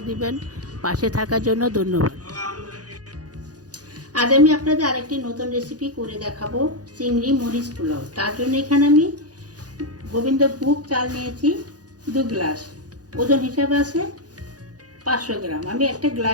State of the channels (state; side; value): late; left; 0.68 ms